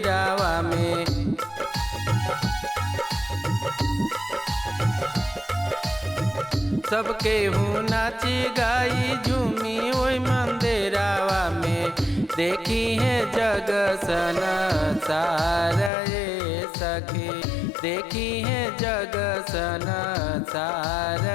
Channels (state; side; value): drops out; right; at 15.9 s